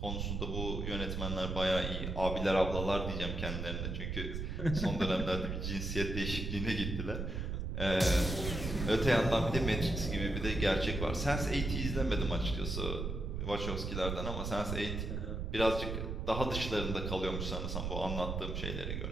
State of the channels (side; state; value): right; noise; rumble, 3 dB below the sound